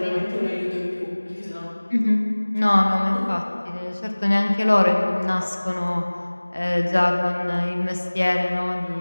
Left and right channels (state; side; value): inverted; both; correlation -1.00